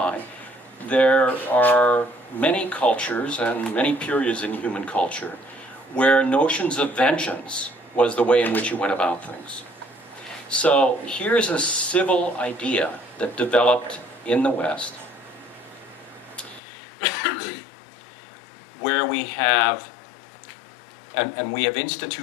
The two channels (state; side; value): drops out; right; at 16.6 s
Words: there are many cultures and many periods in human culture where notions of vengeance was the way in which you went about things. So here's a civil idea that developed in the West where we have, and we have